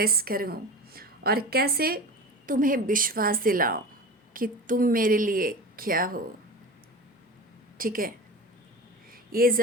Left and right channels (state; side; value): normal; both; correlation 0.30